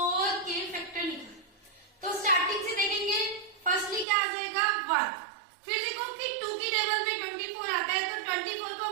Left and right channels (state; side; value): drops out; left; at 4.0 s